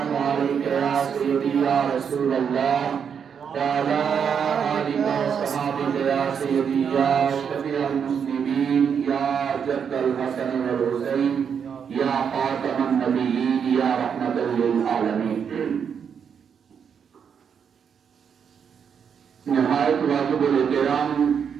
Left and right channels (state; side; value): quieter; left; 7.2 dB